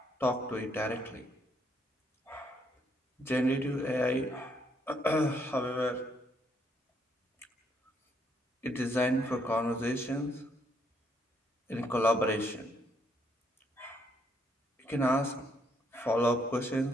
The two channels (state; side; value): normal; both; correlation 0.72